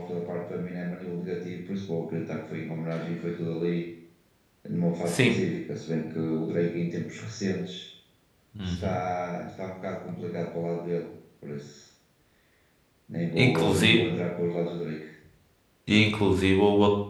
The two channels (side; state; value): both; identical; correlation 1.00